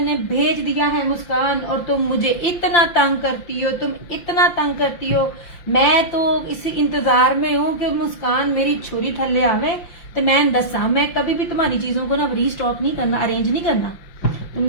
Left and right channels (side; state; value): right; late; 5.8 ms